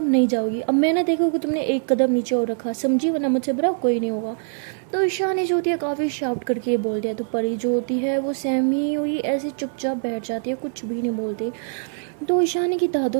नहीं जाओगी। अब मैं ना देखो कि तुमने एक कदम नीचे और रखा, समझी, वरना मुझसे बुरा कोई नहीं होगा। तो ईशानी जो होती है काफ़ी शाउट करके ये बोल दिया। तो परी जो होती है वो सहमी हुई ऐसे चुपचाप बैठ जाती है, कुछ भी नहीं बोलती। तो ईशानी की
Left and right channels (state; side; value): silent; left; digital silence